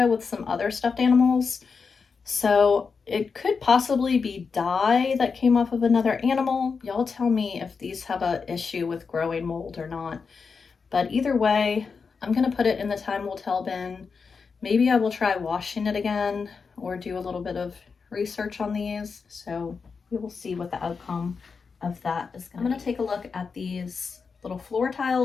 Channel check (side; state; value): right; quieter; 5.2 dB